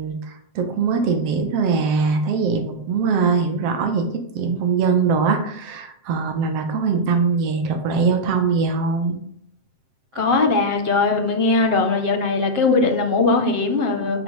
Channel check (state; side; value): late; left; 7.7 ms